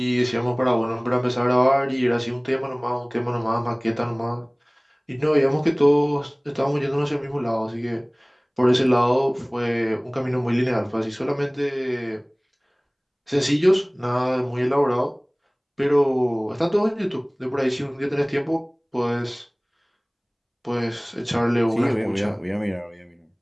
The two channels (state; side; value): identical; both; correlation 1.00